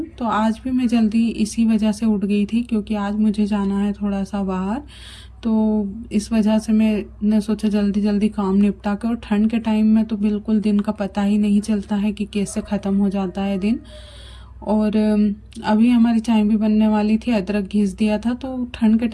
तो आज भी मैं जल्दी इसी वजह से उठ गई थी, क्योंकि आज मुझे जाना है थोड़ा सा बाहर। तो इस वजह से मैंने सोचा जल्दी जल्दी काम निपटा के। और ठंड के टाइम में तो बिल्कुल दिन का पता ही नहीं चलता है कि कैसे ख़त्म हो जाता है दिन। और अभी हमारी चाय भी बनने वाली थी, अदरक घिस दिया था। तो ठंड के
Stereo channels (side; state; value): both; identical; correlation 1.00